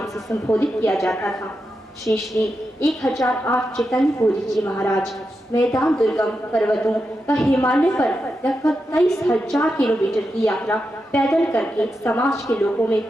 से संबोधित किया जाता था। श्री श्री 1008 चैतन्य पुरी जी महाराज मैदान दुर्गम पर्वतों व हिमालय पर लगभग 23,000 किलोमीटर की यात्रा पैदल करके समाज के लोगों में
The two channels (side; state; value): both; normal; correlation 0.88